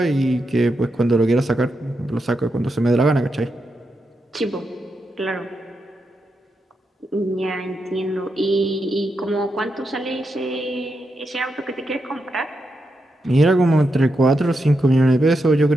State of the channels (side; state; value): both; normal; correlation 0.85